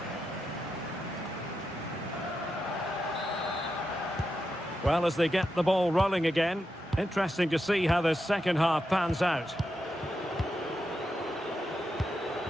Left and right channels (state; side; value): normal; both; correlation 0.87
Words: Well, as they get the ball rolling again, interesting to see how the second half pans out.